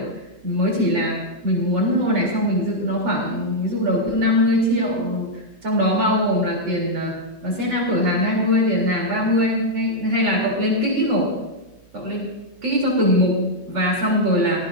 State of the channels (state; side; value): noise; right; hum, 30 dB below the sound